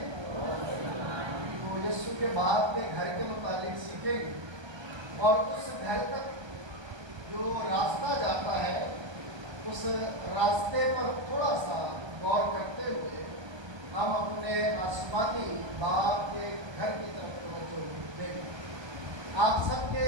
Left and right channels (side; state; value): left; late; 1.3 ms